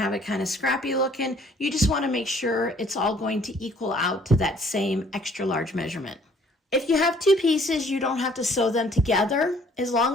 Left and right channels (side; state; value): both; normal; correlation 0.59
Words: it kind of scrappy looking, you just want to make sure it's all going to equal out to that same extra large measurement. If you have two pieces, you don't have to sew them together as